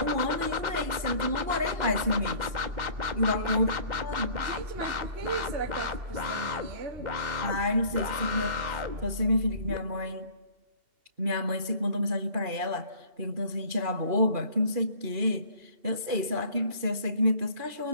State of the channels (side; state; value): left; late; 2.8 ms